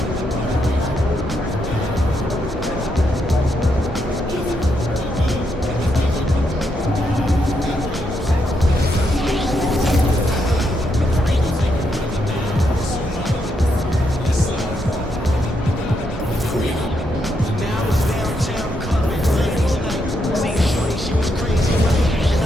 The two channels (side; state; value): both; normal; correlation 0.79